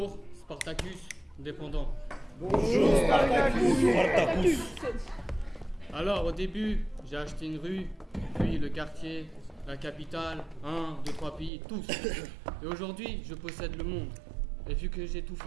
Spartacus, dépendant. Bonjour, Spartacus. Alors, au début, j'ai acheté une rue, puis le quartier, la capitale, 1, 2, 3 pays, tous. Et aujourd'hui, je possède le monde. Et vu que j'ai tout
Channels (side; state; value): left; drops out; at 11.5 s